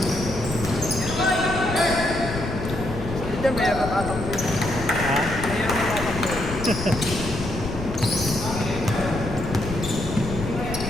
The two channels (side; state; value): left; noise; rumble, 7 dB below the sound